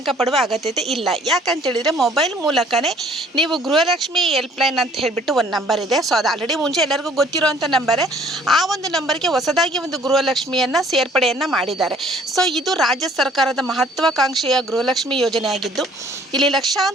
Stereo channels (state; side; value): normal; both; correlation 0.58